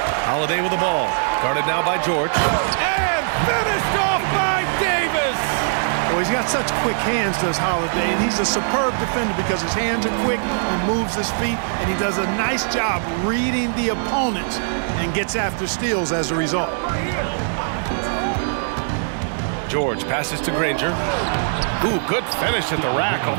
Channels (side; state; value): left; silent; 65 dB below the other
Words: Holiday with the ball. Guarded now by George. And finished off by Davis. Well, he's got such quick hands, does Holiday, and he's a superb defender because his hands are quick, he moves his feet, and he does a nice job reading the opponents and gets after steals as a result. George passes to Granger. Ooh, good finish at the rack